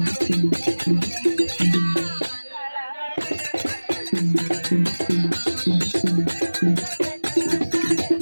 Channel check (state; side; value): inverted; both; correlation -1.00